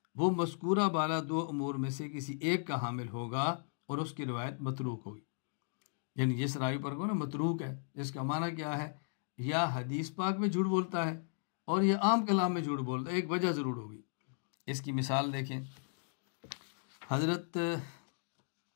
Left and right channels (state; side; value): silent; right; digital silence